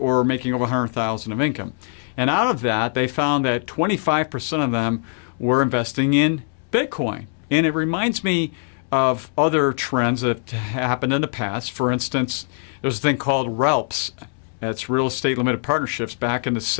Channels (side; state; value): right; silent; 64 dB below the other